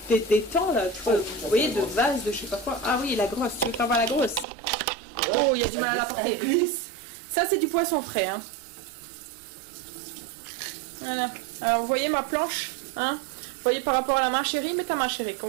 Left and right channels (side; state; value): left; drops out; at 4.5 s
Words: d'étang, là. Tu vois, vous voyez, de vase, de je sais pas quoi. Ah oui, la grosse. Tu veux faire voir la grosse? Oh, il y a du mal à la porter. Ça, c'est du poisson frais, hein. Voilà. Alors, vous voyez ma planche, hein? Vous voyez par rapport à la main Chérie, mais ta main Chérie, qu'on